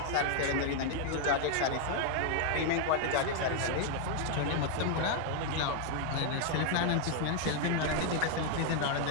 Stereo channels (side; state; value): both; different; correlation 0.00